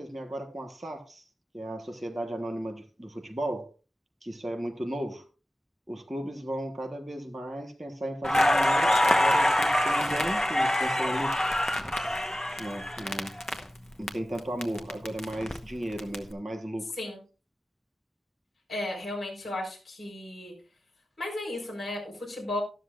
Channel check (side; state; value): both; normal; correlation 0.94